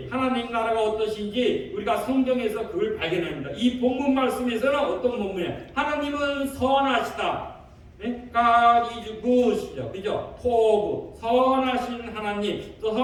하나님 나라가 어떠신지 우리가 성경에서 그걸 발견합니다. 이 본문 말씀에서는 어떤 본문이에요? 하나님은 선하시다. God is good이죠. 그죠? 포부, 선하신 하나님, 또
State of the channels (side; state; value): both; identical; correlation 1.00